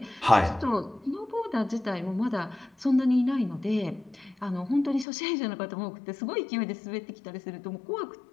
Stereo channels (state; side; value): drops out; right; at 5.1 s